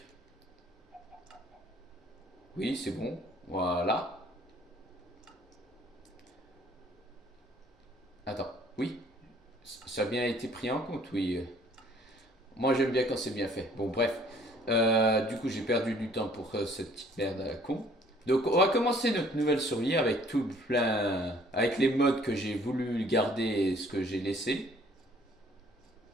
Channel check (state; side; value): normal; both; correlation 0.58